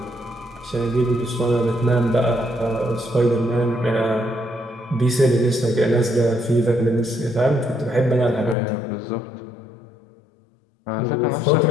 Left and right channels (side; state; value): right; drops out; at 8.6 s